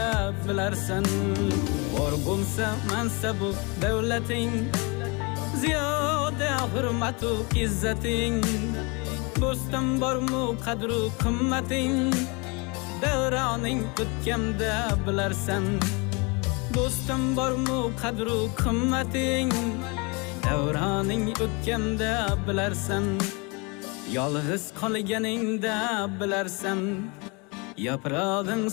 bilarsan. Bor bo'lsa mansabu davlating, ziyoda hurmatu izzating, do'stim bormu qadru qimmating, davroning o'tganda bilarsan. Do'stim bormu qadru qimmating, davroning o'tganda bilarsan. Yolg'iz qolganingda bilarsan, yaprog'ing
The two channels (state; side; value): quieter; right; 29.8 dB